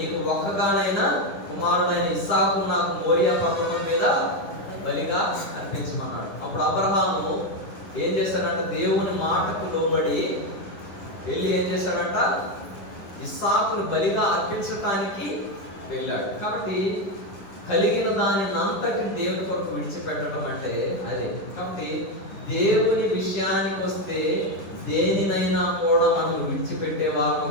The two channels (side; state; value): right; late; 10 ms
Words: ఒక్కగానైనా కుమారుడైన ఇస్సాకు నాకు మోరియా పర్వతం మీద బలిగా అర్పించమన్నాడు. అప్పుడు అబ్రహాము ఏం చేశాడంట, దేవుని మాటకు లోబడి వెళ్ళి ఏం చేశాడంట, ఇస్సాకును బలిగా అర్పించటానికి వెళ్ళాడు. కాబట్టి కలిగిన దాని అంతటిని దేవుని కొరకు విడిచిపెట్టడం అంటే అదే. కాబట్టి దేవుని విషయానికి వస్తే దేనినైనా కూడా మనం విడిచిపెట్టే